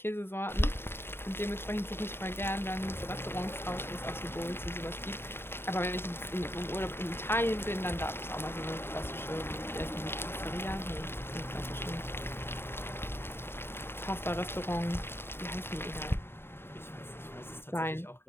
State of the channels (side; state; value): right; late; 0.11 ms